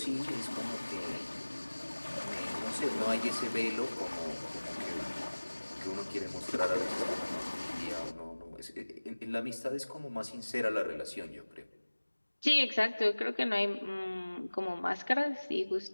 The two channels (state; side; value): inverted; both; correlation -1.00